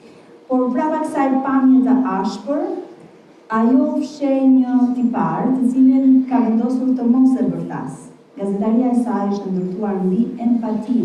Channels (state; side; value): identical; both; correlation 1.00